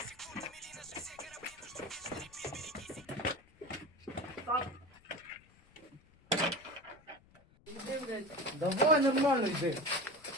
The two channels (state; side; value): noise; left; rumble, 27 dB below the sound